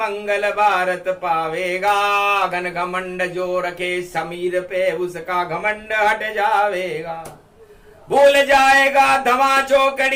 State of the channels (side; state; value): both; identical; correlation 1.00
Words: भारत पावेगा। घन घमंड जो रखे समीर पे उसका घमंड हट जावेगा। भूल जाएगा धमा